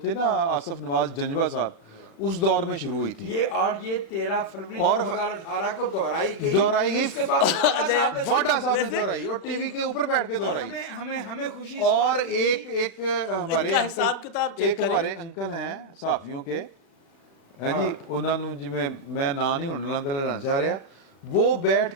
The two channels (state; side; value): late; right; 36 ms